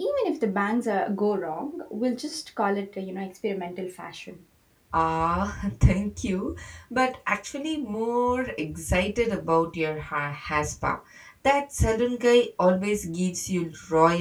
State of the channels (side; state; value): both; identical; correlation 1.00